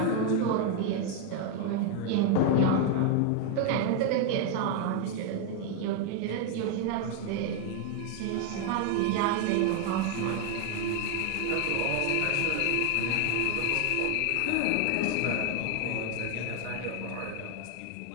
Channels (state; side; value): different; both; correlation 0.01